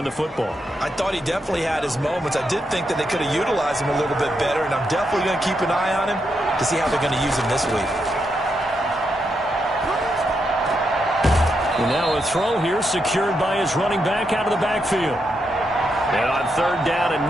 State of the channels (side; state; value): both; normal; correlation 0.82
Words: the football? I thought he definitely had his moments. I did think that they could have utilized him a little bit better, and I'm definitely going to keep an eye on him to see how they're going to use him this week. And now a throw here secured by his running back out of the backfield. And on 3rd down, a